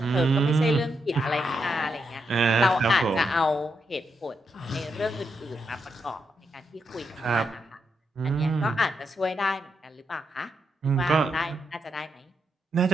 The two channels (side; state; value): both; normal; correlation 0.83